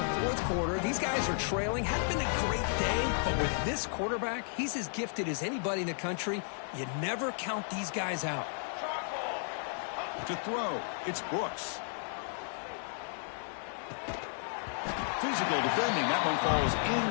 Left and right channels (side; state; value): right; silent; digital silence